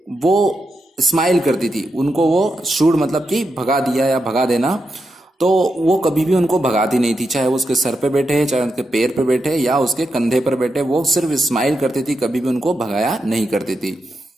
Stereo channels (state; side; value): normal; both; correlation 0.86